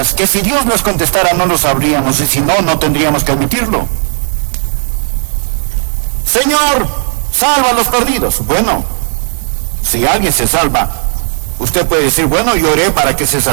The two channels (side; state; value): left; silent; digital silence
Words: que si Dios nos contestara no lo sabríamos y si no, no tendríamos que admitirlo? Señor, salva a los perdidos. Bueno, si alguien se salva, usted puede decir, bueno, yo oré para que se